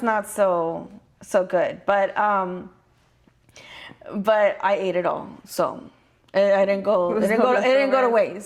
not so good, but I ate it all, so I didn't go. It didn't go to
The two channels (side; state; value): both; identical; correlation 1.00